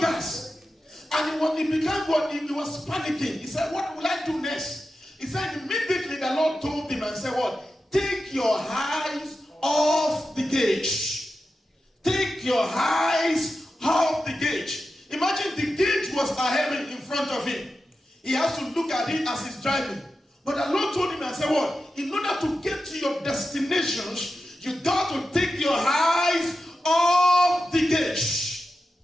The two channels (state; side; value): normal; both; correlation 0.91